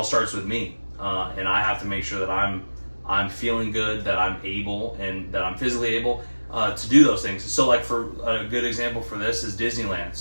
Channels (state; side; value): inverted; both; correlation -1.00